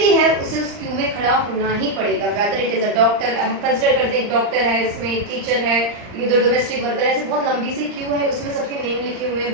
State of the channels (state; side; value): late; left; 39 ms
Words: है उसे उस क्यू में खड़ा होना ही पड़ेगा. Whether it is a doctor, हम कंसिडर करते हैं एक डॉक्टर है, इसमें एक टीचर है, ये दो डोमेस्टिक वर्कर है. ऐसे बहुत लंबी सी क्यू है, उसमें सबके नेम लिखे हुए हैं,